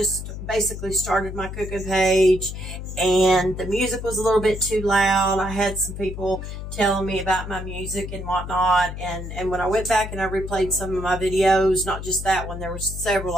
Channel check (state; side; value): noise; left; hum, 8 dB below the sound